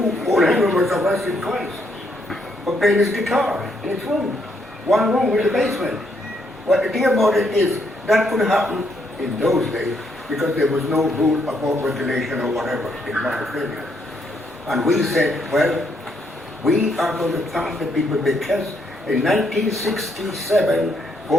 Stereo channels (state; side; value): normal; both; correlation 0.74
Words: Henry was arrested twice for playing his guitar in his room. One room in the basement. But the thing about it is, that could happen in those days because there was no rule about regulation or whatever, in my opinion. And we said, well, we are going to thank the people because in 1967,